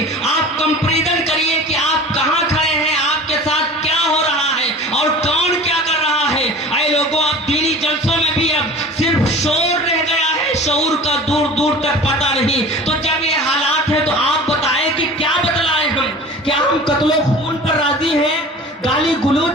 آپ کمپیریزن کریے کہ آپ کہاں کھڑے ہیں، آپ کے ساتھ کیا ہو رہا ہے اور کون کیا کر رہا ہے۔ اے لوگوں، اب دینی جلسوں میں بھی اب صرف شور رہ گیا ہے، شعور کا دور دور تک پتہ نہیں۔ تو جب یہ حالات ہے تو آپ بتائیں کہ کیا بدلائیں ہم؟ کیا ہم قتل و خون پر راضی ہیں، گالی گلوچ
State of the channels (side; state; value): both; normal; correlation 0.40